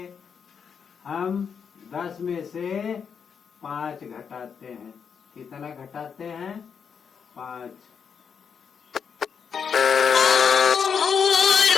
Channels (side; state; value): right; quieter; 6.7 dB